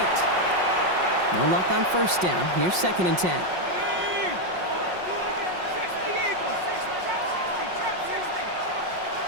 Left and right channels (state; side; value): late; left; 5.5 ms